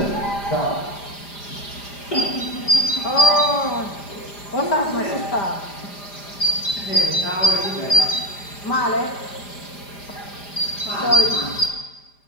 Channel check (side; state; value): right; late; 5.0 ms